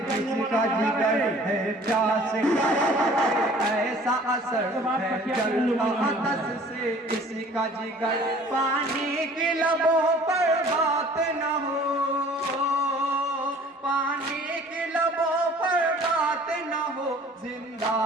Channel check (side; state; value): both; normal; correlation 0.51